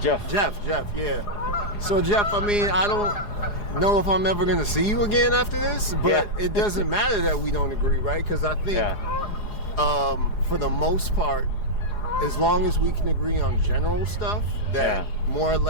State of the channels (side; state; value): right; late; 4.8 ms